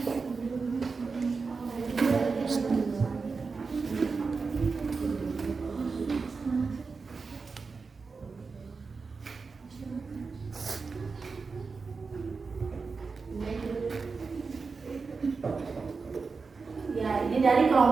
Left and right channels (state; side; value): quieter; left; 4.6 dB